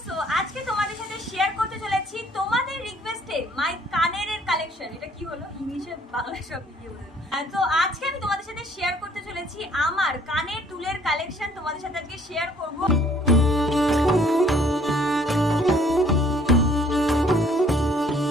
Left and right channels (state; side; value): normal; both; correlation 0.60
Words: সো আজকে তোমাদের সাথে শেয়ার করতে চলেছি তোমাদের রিকোয়েস্টে মাই কানের কালেকশন। এটা কি হলো, ইংলিশে বাংলা সব ভিডিও বলে। তো আজকে আমি তোমাদের সাথে শেয়ার করতে চলেছি আমার কানের দুলের কালেকশন। তোমাদের সাথে আজকে শেয়ার করব।